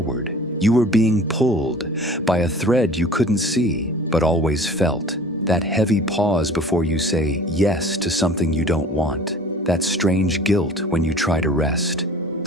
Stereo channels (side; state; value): both; normal; correlation 0.46